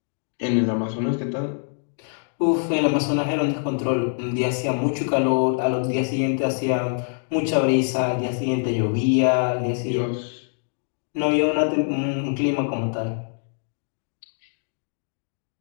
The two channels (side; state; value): right; silent; digital silence